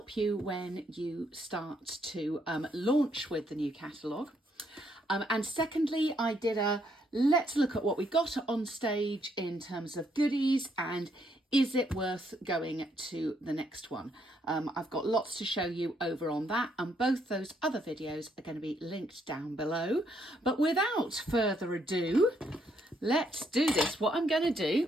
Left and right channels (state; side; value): normal; both; correlation 0.73